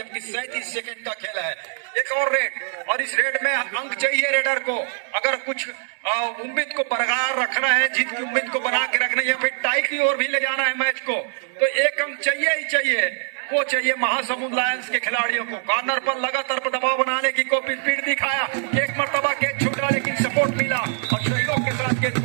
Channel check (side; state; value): left; silent; 63 dB below the other